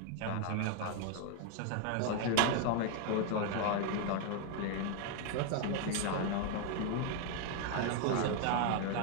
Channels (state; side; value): different; both; correlation 0.00